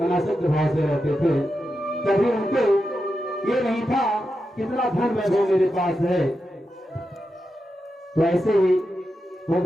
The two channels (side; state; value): both; normal; correlation 0.88